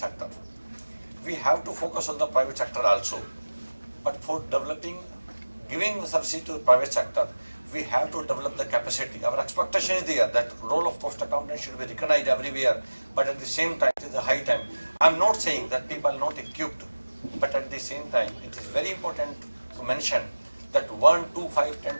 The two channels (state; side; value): inverted; both; correlation -1.00